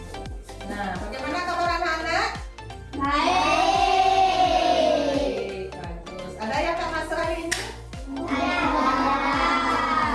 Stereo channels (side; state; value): both; identical; correlation 1.00